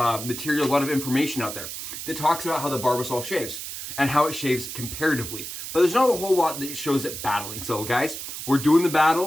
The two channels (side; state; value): right; noise; hiss, 8 dB below the sound